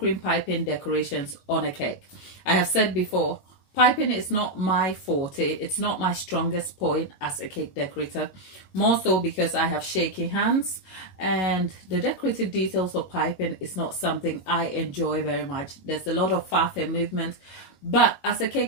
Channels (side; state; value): right; late; 21 ms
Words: piping decorations on a cake. I have said before, piping is not my forte. It's not my strongest point as a cake decorator, more so because I have shaky hands and the decorative details of piping is not something I enjoy very much. There's a lot of faff and movement, but as a